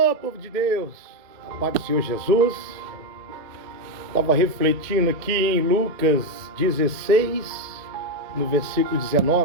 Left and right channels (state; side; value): late; left; 2.1 ms